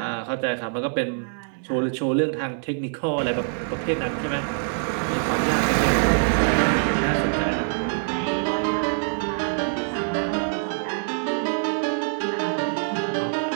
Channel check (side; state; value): left; silent; digital silence